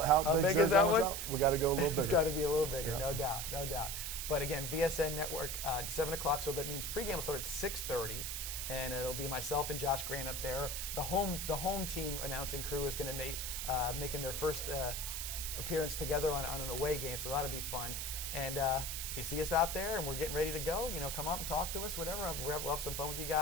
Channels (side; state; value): right; noise; hiss, 4 dB below the sound